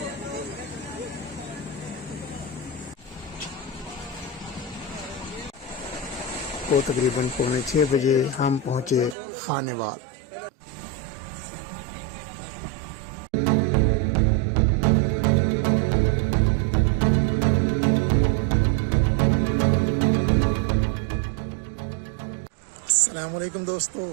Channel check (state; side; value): drops out; left; at 9.2 s